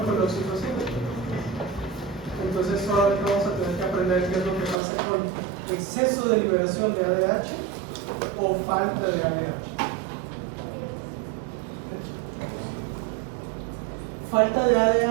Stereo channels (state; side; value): drops out; left; at 4.8 s